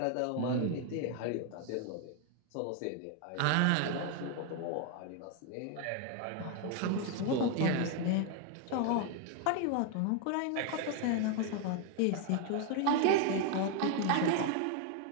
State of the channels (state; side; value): different; both; correlation 0.01